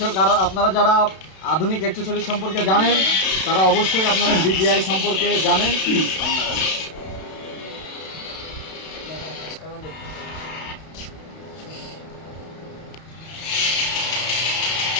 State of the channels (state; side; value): late; right; 32 ms